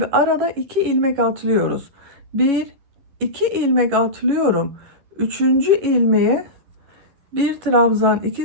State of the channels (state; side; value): late; left; 11 ms